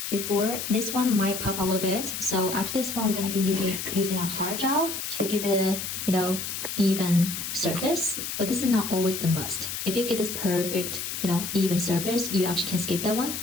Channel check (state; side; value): noise; left; hiss, 5 dB below the sound